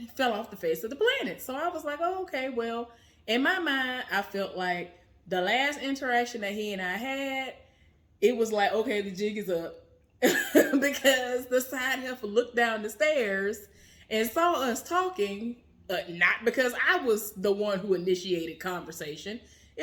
fell off the face of the planet. So I was like, oh, okay, well, in my mind, I felt like the last interaction that he and I had, it was like, okay, the jig is up. Because the side heifer looked down the stairs and saw us talking, not because I was the one who initiated conversation.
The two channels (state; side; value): identical; both; correlation 1.00